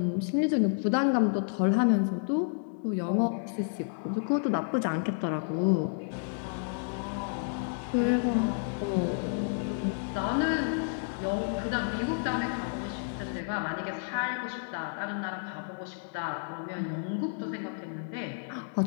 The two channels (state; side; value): silent; right; digital silence